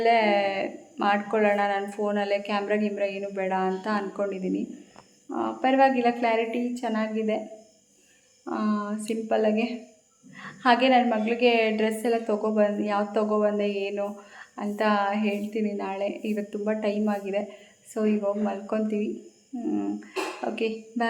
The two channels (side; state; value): both; identical; correlation 1.00